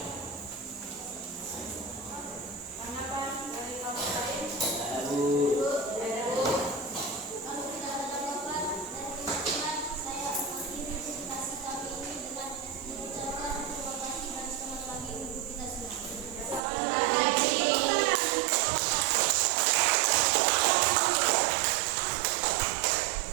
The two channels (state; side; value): drops out; left; at 16.6 s